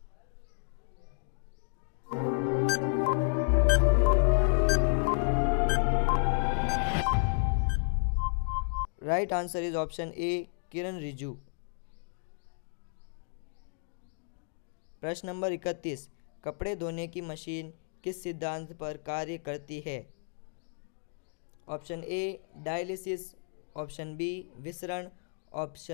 Right answer is option A Kiran Rijiju. प्रश्न नंबर 31, कपड़े धोने की मशीन किस सिद्धांत पर कार्य करती है? Option A dialysis, option B विसरण,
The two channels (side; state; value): right; silent; digital silence